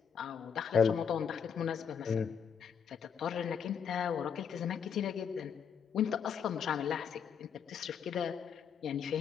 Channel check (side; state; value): right; quieter; 7.3 dB